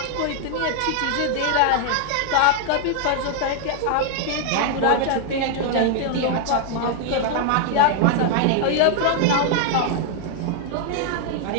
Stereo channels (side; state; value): both; different; correlation 0.00